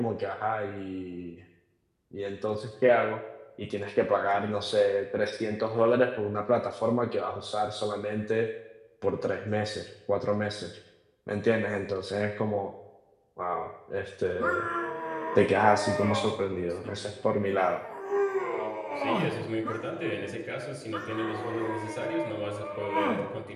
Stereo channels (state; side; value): identical; both; correlation 1.00